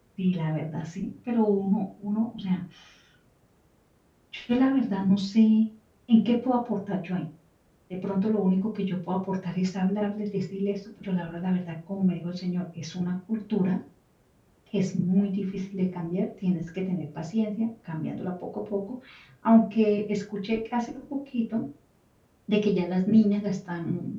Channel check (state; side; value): identical; both; correlation 1.00